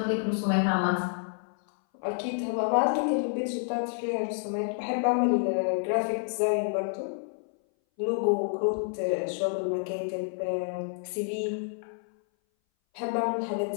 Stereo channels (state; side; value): silent; right; 59 dB below the other